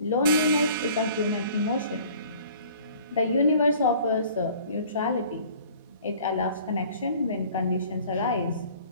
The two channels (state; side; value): inverted; both; correlation -0.51